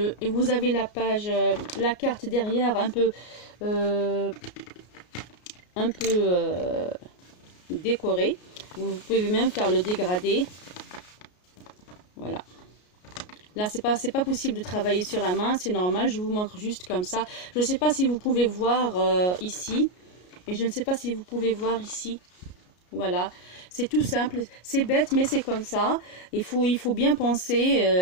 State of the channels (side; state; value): right; late; 33 ms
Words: et vous avez la page, la carte derrière un peu décorée. Vous pouvez même faire le dégradé. Voilà. Là, c'est pas possible de travailler sur la main, c'est normal. Je vous montre juste comme ça. Je ne sais pas si vous pouvez voir ici. Et je ne sais pas si vous pouvez voir ici. Voilà. C'est tout simple. C'est bête, mais c'est comme ça. Il faut bien